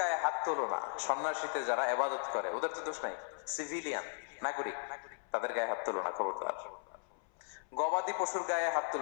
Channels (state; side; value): silent; right; 53 dB below the other